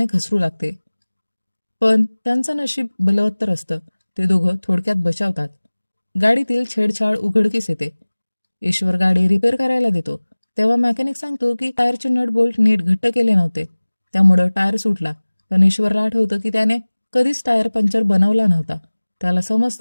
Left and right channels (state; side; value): inverted; both; correlation -1.00